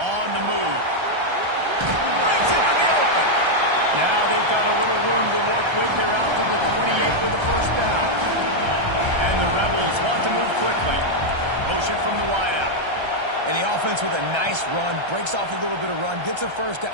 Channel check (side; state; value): left; late; 1.3 ms